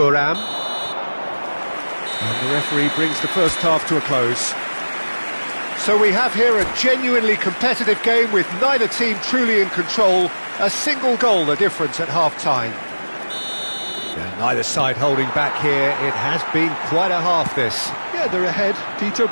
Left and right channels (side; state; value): both; inverted; correlation -1.00